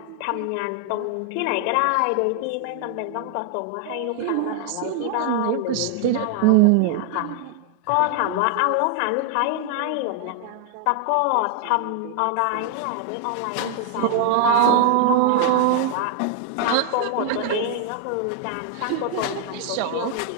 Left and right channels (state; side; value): different; both; correlation 0.00